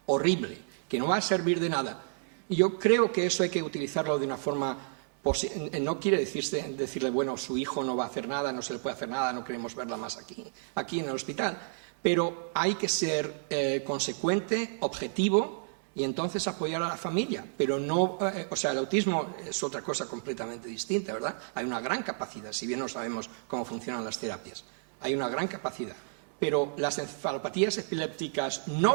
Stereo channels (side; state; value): left; silent; digital silence